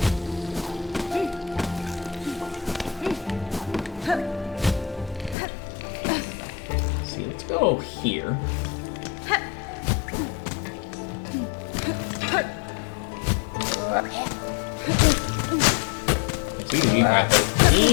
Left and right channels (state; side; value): drops out; right; at 5.4 s